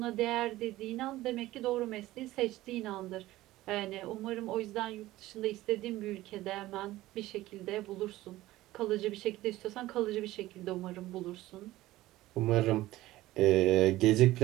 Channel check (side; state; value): left; quieter; 16.7 dB